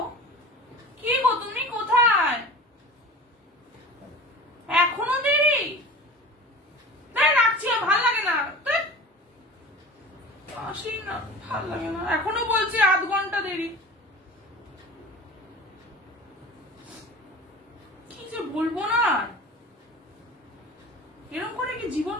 কি গো, তুমি কোথায়? এখনো দেরি? রাখছি, ভাল লাগে না। আসি না, ভাল লাগে না। এখনো বলছি 8 ঘন্টা দেরি। কি যে বলবো না, এরকম করে কি জীবন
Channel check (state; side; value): normal; both; correlation 0.37